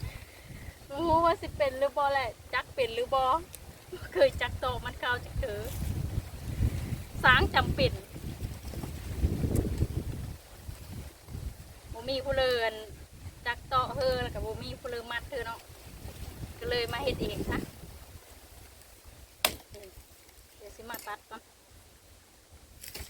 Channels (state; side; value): identical; both; correlation 1.00